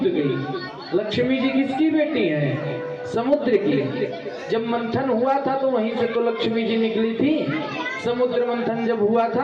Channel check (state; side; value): identical; both; correlation 1.00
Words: गई। लक्ष्मी जी किसकी बेटी हैं? समुद्र की। जब मंथन हुआ था तो वहीं से तो लक्ष्मी जी निकली थी। समुद्र मंथन जब हुआ